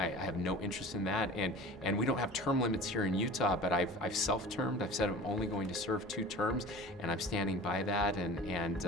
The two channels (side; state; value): both; normal; correlation 0.39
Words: have no interest in that, and we don't have term limits here in Utah, but I've self-termed. I've said I'm only going to serve 2 terms, and I'm standing by that, and